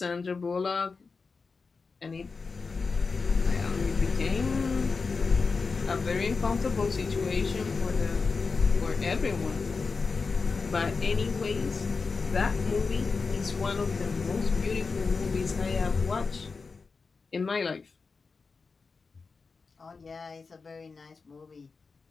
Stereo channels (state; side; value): quieter; right; 4.6 dB